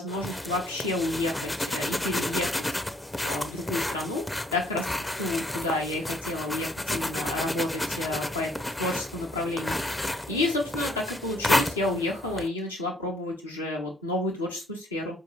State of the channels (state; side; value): normal; both; correlation 0.65